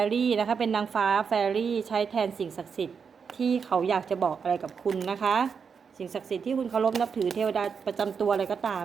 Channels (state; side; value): quieter; left; 6.1 dB